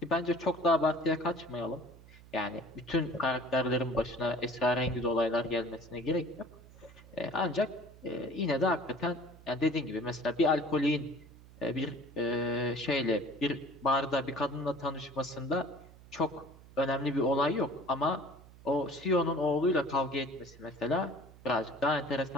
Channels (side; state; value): right; noise; hum, 21 dB below the sound